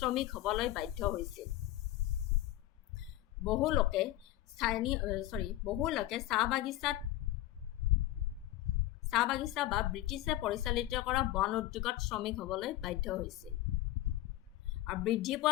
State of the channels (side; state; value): right; quieter; 15.2 dB